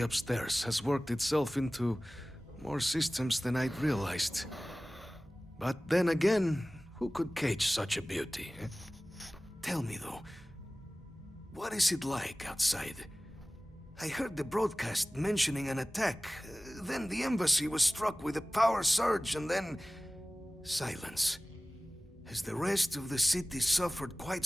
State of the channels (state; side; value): normal; both; correlation 0.98